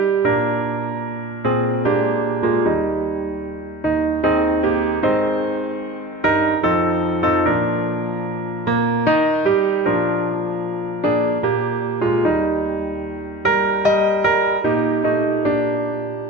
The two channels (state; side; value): normal; both; correlation 0.37